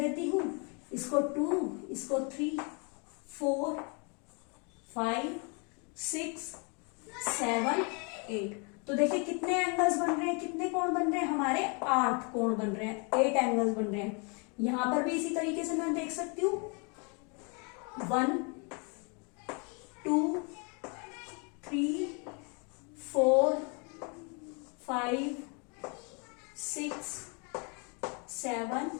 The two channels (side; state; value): right; quieter; 34.5 dB